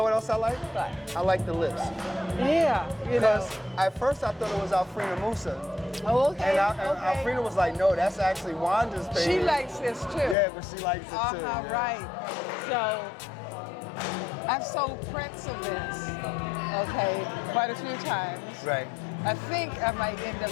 what else I like? What? I like the lips. Yeah, you know. Because at first I thought it was Alfreda Musa. Oh, okay. And Alfreda was like, no, that's actually Wanda's thing. She likes this too. Yeah, but she likes it too. Yeah. Right. So, I've sold prints of this, okay, quite a few times. Right. I think I might end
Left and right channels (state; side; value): drops out; right; at 10.4 s